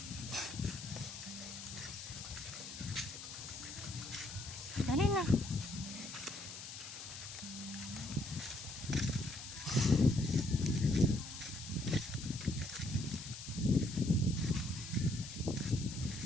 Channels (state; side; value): noise; left; hiss, 10 dB below the sound